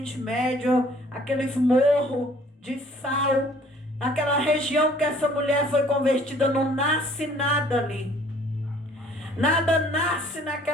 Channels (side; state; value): both; normal; correlation 0.57